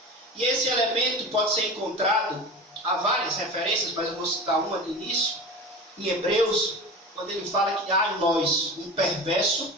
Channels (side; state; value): both; normal; correlation 0.31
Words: E esse elemento pode ser encontrado, há várias referências, mas eu vou citar uma de início, em Hebreus, quando ele fala que há em nós um perverso